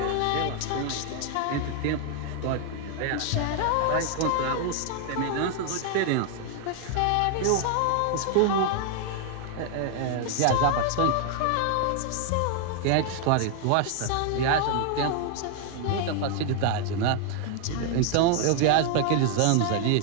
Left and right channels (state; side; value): different; both; correlation 0.00